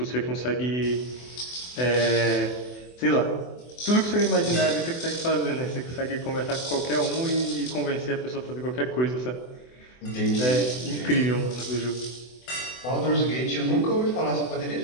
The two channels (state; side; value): late; right; 24 ms